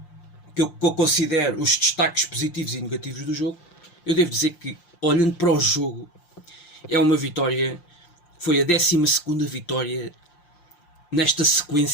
que eu considero os destaques positivos e negativos do jogo, eu devo dizer que, olhando para o jogo, é uma vitória, foi a 12ª vitória nesta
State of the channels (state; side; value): late; right; 5.7 ms